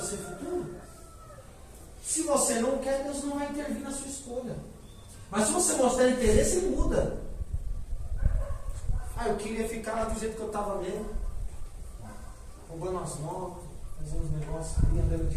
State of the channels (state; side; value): identical; both; correlation 1.00